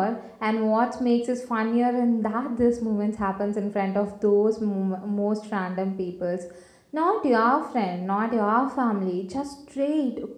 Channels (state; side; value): identical; both; correlation 1.00